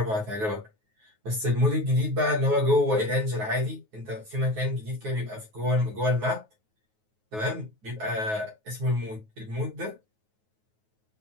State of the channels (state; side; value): late; left; 9.4 ms